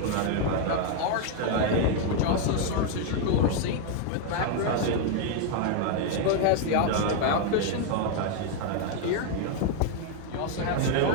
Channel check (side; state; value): both; different; correlation 0.00